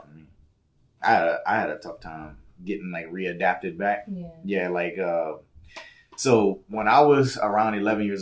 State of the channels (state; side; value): identical; both; correlation 1.00